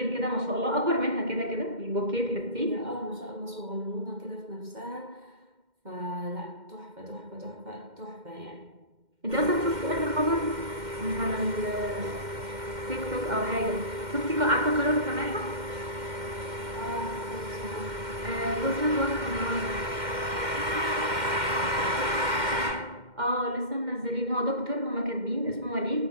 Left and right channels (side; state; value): left; late; 2.1 ms